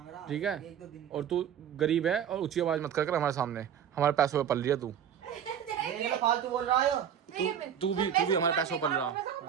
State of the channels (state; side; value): quieter; left; 8.9 dB